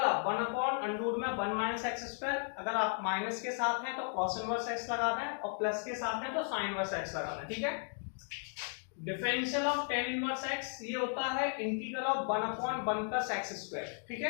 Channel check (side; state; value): right; silent; 54 dB below the other